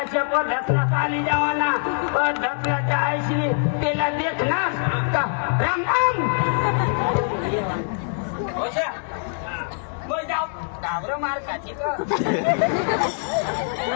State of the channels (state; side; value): silent; right; 63 dB below the other